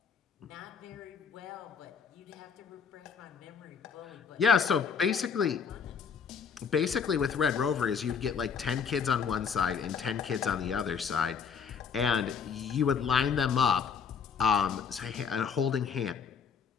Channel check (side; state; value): right; quieter; 6.5 dB